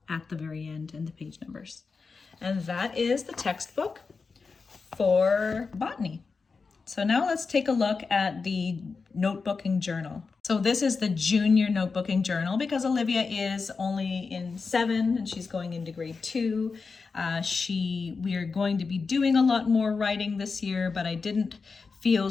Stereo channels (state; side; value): quieter; right; 4.7 dB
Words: at the very end and the page numbers. And that is the textbook for botany. So now let's take a look at the notebooking journal. So this is the junior notebooking journal because Olivia is only in 7 and she's going into grade 2. We are going to be doing a lot more writing this year, but I didn't feel